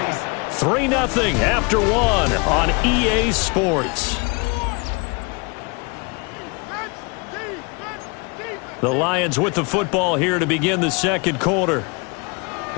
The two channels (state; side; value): quieter; right; 31.4 dB